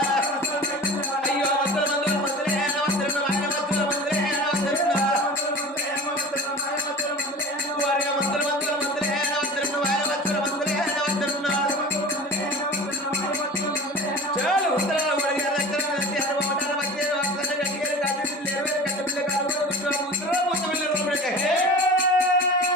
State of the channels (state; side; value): normal; both; correlation 0.37